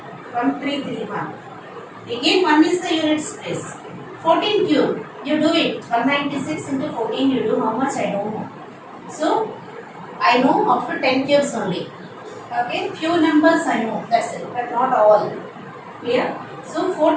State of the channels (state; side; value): identical; both; correlation 1.00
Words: 1, 3, 3, 1. Again 1 is the units place. 14 cube, you do it. 196 into 14 you do how much I don't know. So I know up to 10 cubes only. Okay, few numbers I know, that's it, but not all. Clear? So